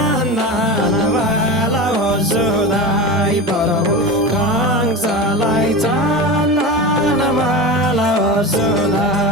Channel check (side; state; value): both; normal; correlation 0.25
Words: वाला हो सुधाई परबो कंसलाई चन्दन वाला हो